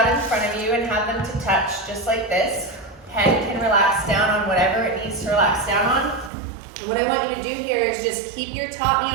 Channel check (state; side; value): drops out; left; at 6.3 s